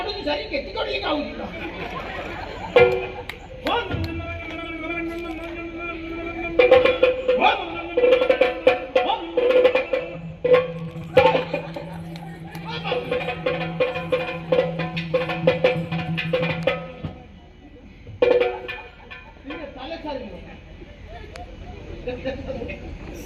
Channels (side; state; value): both; identical; correlation 1.00